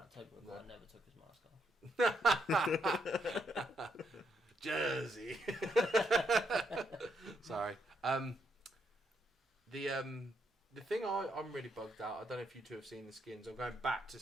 Tobey Maguire never took his mask off. Jersey. Sorry. The thing I'm really bugged out. I don't know if you two have seen the skins. I'm going back to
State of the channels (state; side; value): normal; both; correlation 0.76